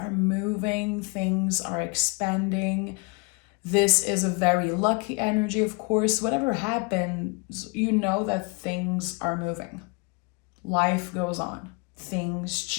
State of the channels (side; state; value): right; quieter; 31.3 dB